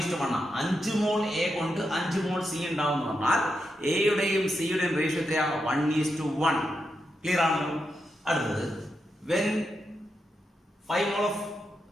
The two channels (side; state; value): both; normal; correlation 0.85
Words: ആണ്. 5 മോൾ A കൊണ്ട് 5 മോൾ C ഉണ്ടാവും എന്ന് പറഞ്ഞാൽ എയുടെയും സിയുടെയും റേഷ്യോ 1:1. ക്ലിയർ ആണല്ലോ? അടുത്തത് when 5 mole